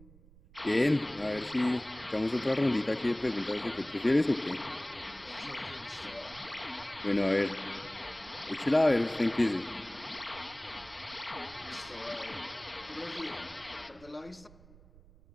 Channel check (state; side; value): noise; right; rumble, 23 dB below the sound